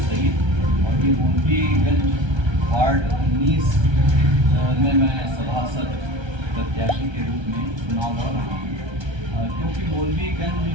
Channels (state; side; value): late; left; 1.3 ms